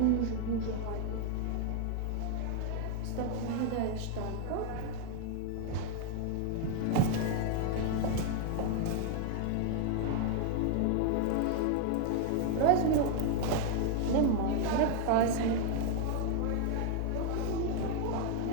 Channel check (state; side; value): different; both; correlation 0.00